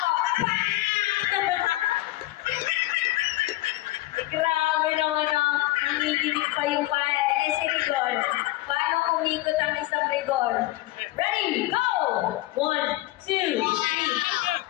Grabe naman ang nanginginig pa yung pae. Eh, si Rigor. Paano umikot ang isang Rigor? Ready? Go! 1, 2, 3.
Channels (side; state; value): right; quieter; 17.8 dB